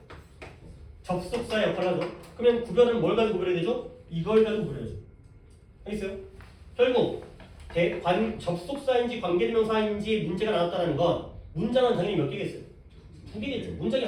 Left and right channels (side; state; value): both; identical; correlation 1.00